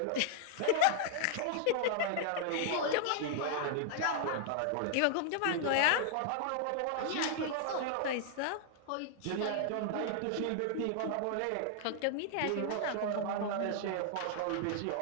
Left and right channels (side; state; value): both; different; correlation -0.01